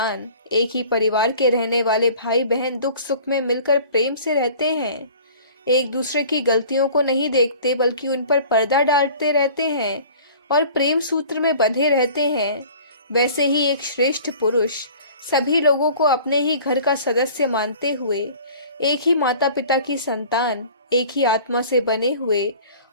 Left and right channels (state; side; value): inverted; both; correlation -0.46